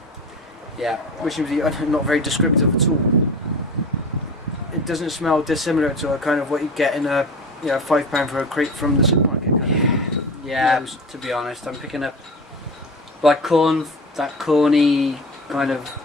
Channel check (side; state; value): both; normal; correlation 0.33